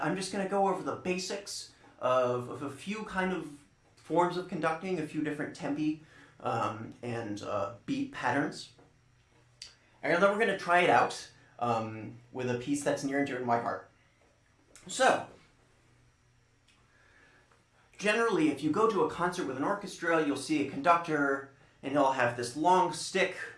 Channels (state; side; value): identical; both; correlation 1.00